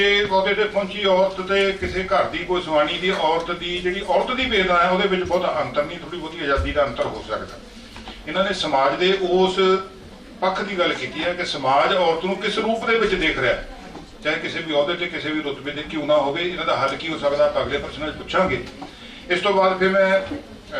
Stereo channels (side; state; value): both; identical; correlation 1.00